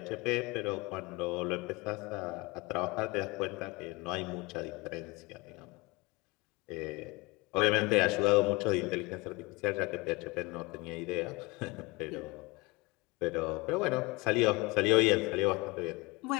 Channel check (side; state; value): right; quieter; 24.6 dB